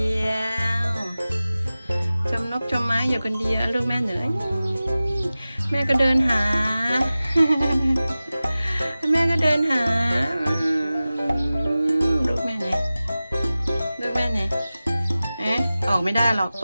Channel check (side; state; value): both; inverted; correlation -0.97